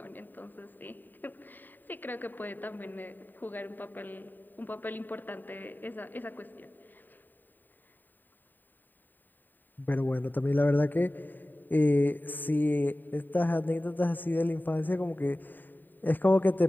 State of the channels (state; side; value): late; right; 0.090 ms